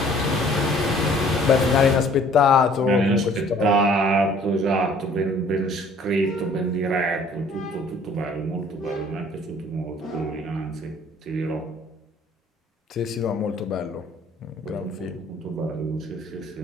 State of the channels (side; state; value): both; normal; correlation 0.55